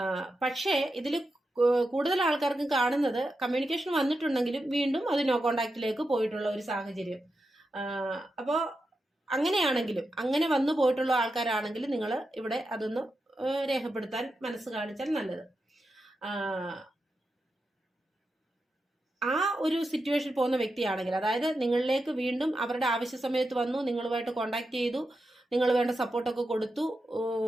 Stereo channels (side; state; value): both; normal; correlation 0.88